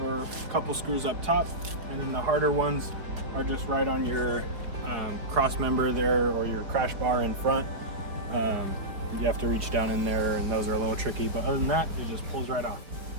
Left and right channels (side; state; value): left; late; 4.6 ms